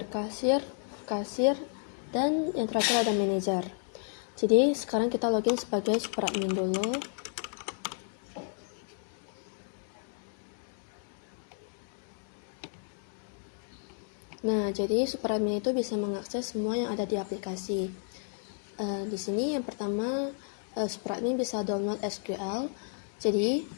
kasir, dan yang terakhir ada manager. Jadi sekarang kita login sebagai super admin dulu. Nah, jadi super admin itu bisa mengakses semua yang ada di aplikasi. Di sini yang pertama, super admin bisa download SQL. Jadi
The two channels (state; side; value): silent; right; 56 dB below the other